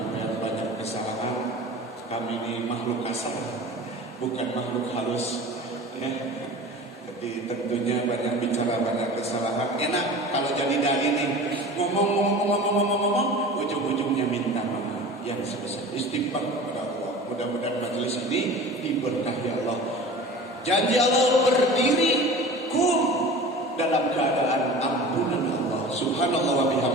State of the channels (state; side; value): normal; both; correlation 0.38